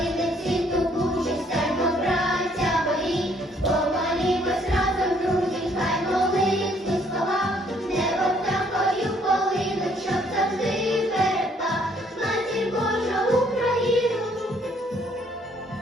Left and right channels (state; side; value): normal; both; correlation 0.65